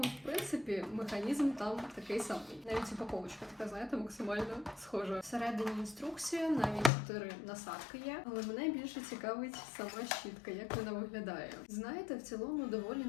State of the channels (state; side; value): drops out; right; at 6.9 s